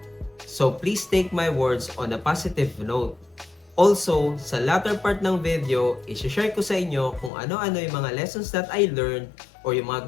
So please take my words on a positive note. Also, sa latter part ng video, isi-share ko sa inyo kung ano-ano yung mga lessons that I learned or yung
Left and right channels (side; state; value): right; drops out; at 7.3 s